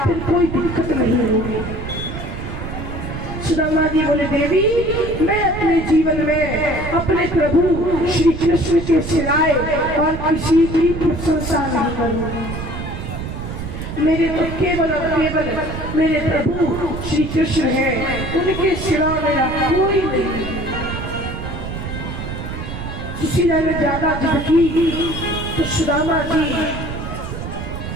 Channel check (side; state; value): right; noise; rumble, 7 dB below the sound